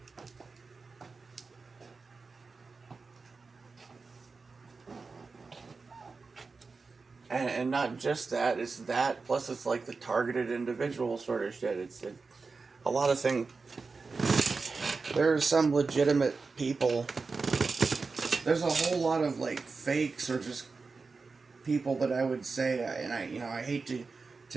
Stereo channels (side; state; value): left; quieter; 4.3 dB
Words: And not just that, it's that, plus it's like the targeted individual sort of shit. A lot of things. There are some legitimate people. There's a whole lot of like fakes or just people that I would say, and I hate